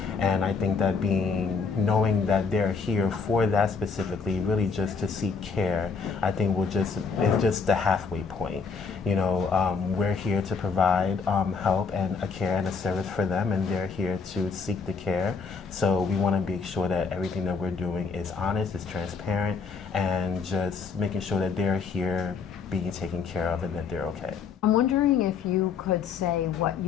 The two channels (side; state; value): right; quieter; 5.3 dB